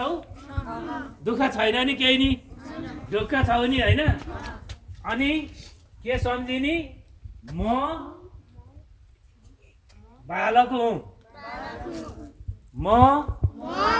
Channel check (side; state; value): both; identical; correlation 1.00